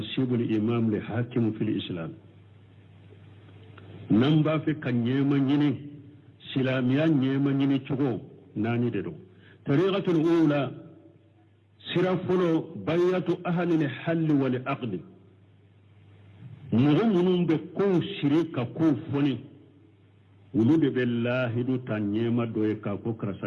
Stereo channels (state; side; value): identical; both; correlation 1.00